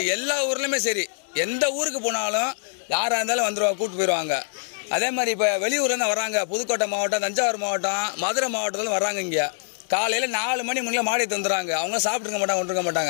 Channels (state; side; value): silent; right; digital silence